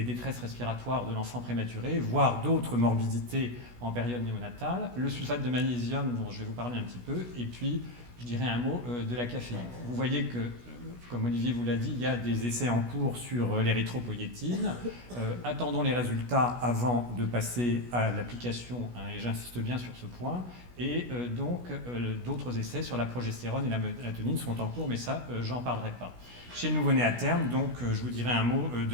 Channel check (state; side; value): late; left; 16 ms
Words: détresses respiratoires de l'enfant prématuré, voire d'autres morbidités en période néonatale. Le sulfate de magnésium, dont je vais vous parler un petit peu, et puis je dirais un mot de la caféine. Vous voyez que, comme Olivier vous l'a dit, il y a des essais en cours sur l'érythropoïétine. Attendons les résultats avant de passer à l'application, hein, et j'insiste bien sur ce point. Et donc, d'autres essais sur la progestérone et la mélatonine sont en cours, mais ça, j'en parlerai pas. Chez le nouveau-né à terme, donc, je vous dirai un mot